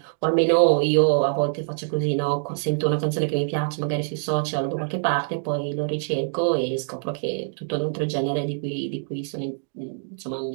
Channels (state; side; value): silent; left; digital silence